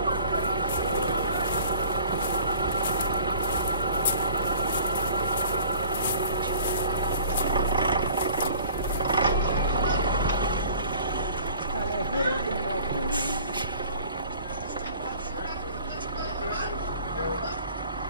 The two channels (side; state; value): both; inverted; correlation -0.49